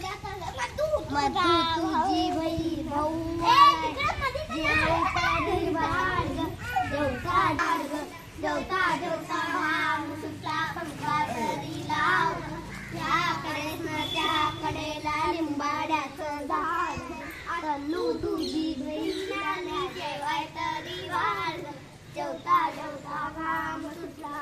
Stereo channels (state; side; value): identical; both; correlation 1.00